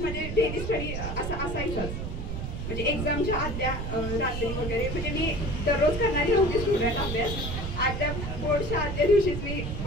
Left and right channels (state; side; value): noise; right; rumble, 4 dB below the sound